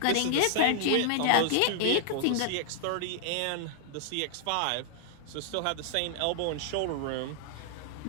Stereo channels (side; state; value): both; different; correlation -0.01